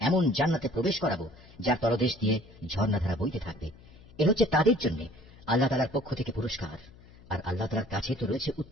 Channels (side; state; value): left; noise; hum, 23 dB below the sound